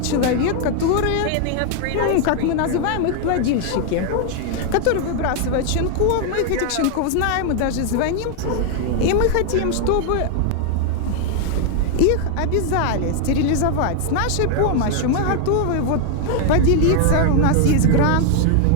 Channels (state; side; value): different; both; correlation 0.00